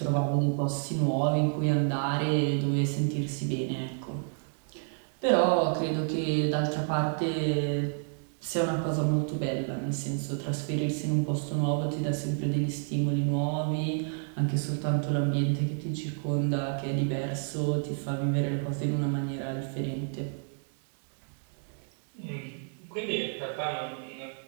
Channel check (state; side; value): silent; left; 58 dB below the other